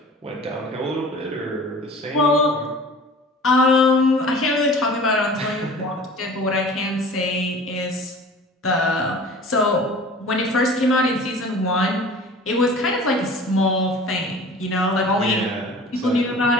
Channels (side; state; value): both; normal; correlation 0.43